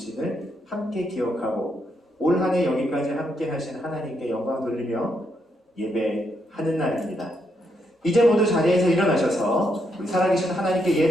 함께 기억하고 올 한 해 여기까지 함께 하신 하나님께 영광 돌리며 예배하는 날입니다. 이제 모두 자리에서 일어나셔서 우리 살아계신 하나님께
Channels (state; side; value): normal; both; correlation 0.78